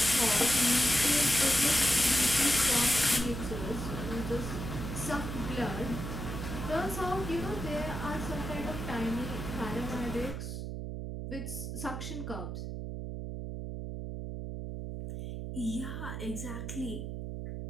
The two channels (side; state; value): right; noise; hum, 5 dB below the sound